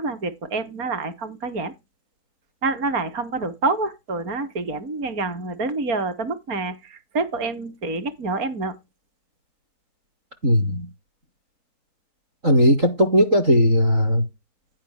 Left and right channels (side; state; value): left; late; 3.8 ms